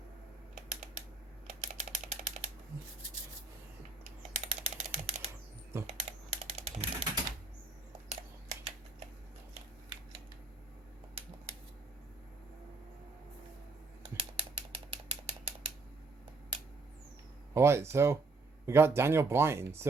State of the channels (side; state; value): left; quieter; 3.7 dB